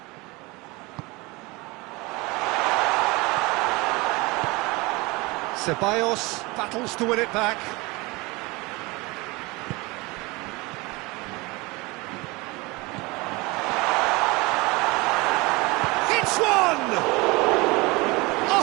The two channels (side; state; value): left; quieter; 24.3 dB